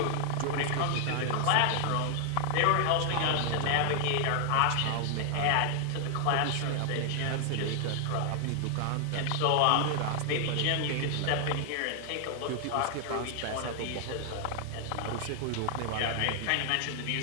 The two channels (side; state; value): both; different; correlation 0.00